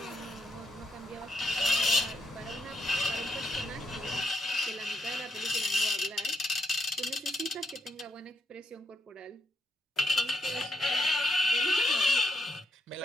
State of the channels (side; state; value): both; normal; correlation 0.80